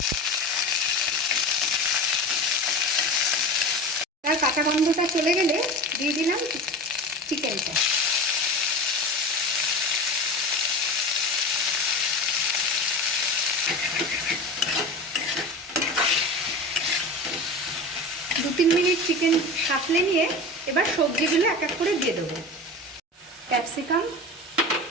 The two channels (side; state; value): both; normal; correlation 0.30